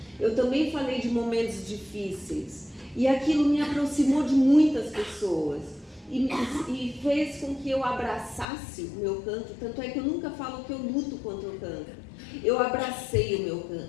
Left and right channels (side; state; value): right; drops out; at 8.5 s